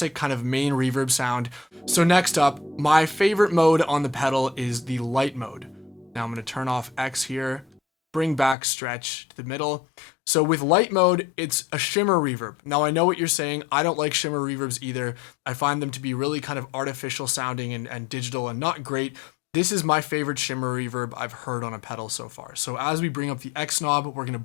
kind of main reverb sound. So next up, my favorite mode on the pedal is the light mode. Now I'm going to turn off X here, bring back stretch to the middle. So with light mode, it's a shimmer reverb. Now I know what you're saying. I don't like shimmer reverbs either. I find them to be really kind of artificial sounding and digital and not great. This is my favorite shimmer reverb I've heard on a pedal so far. So as we bring up the X knob, we're going to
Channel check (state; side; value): drops out; right; at 8.6 s